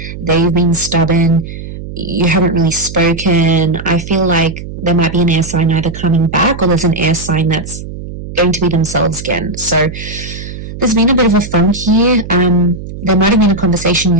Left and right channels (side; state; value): right; noise; hum, 10 dB below the sound